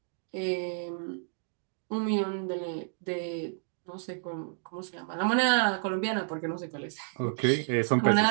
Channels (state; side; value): silent; left; digital silence